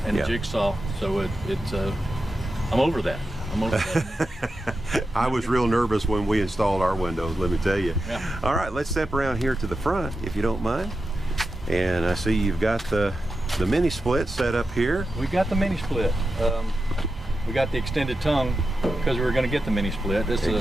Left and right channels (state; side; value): normal; both; correlation 0.90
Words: and a jigsaw. So I'm over that. I was real nervous when we installed our windows, let me tell you. Yeah. All right, let's step around here to the front, if you don't mind. And I see you've got the mini split set up here. We got the mini split. We got the extended tongue because we were going to get the mini split. This